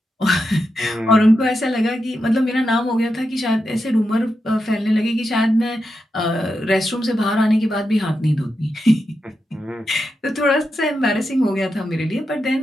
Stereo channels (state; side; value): normal; both; correlation 0.87